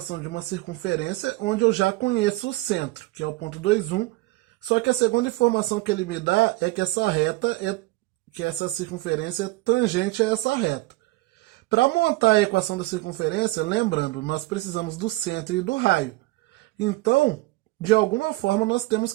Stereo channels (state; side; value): quieter; left; 20.2 dB